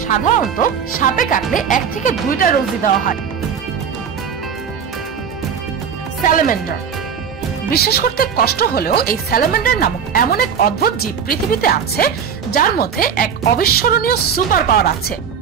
সাধারণত সাপে কাটলে 1 থেকে 2টা ডোজই দেওয়া হয়। স্যালামেন্ডার। বিশ্বাস করতে কষ্ট হলেও এই স্যালামেন্ডার নামক এমন এক অদ্ভুত জীব পৃথিবীতে আছে যার মধ্যে এক অবিস্মরণীয় সুপার পাওয়ার আছে।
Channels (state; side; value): quieter; left; 7.4 dB